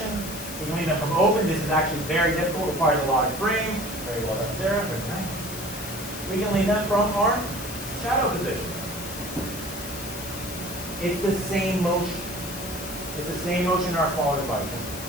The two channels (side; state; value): left; noise; hiss, 10 dB below the sound